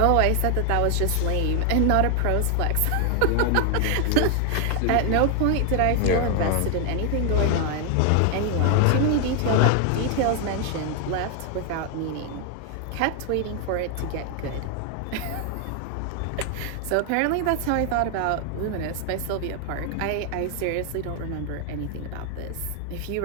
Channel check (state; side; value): different; both; correlation 0.00